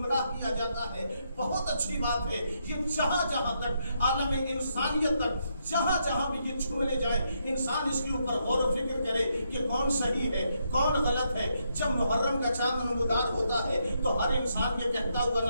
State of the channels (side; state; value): both; inverted; correlation -0.78